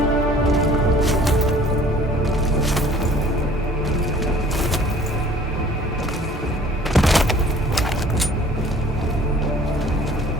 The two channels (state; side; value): normal; both; correlation 0.52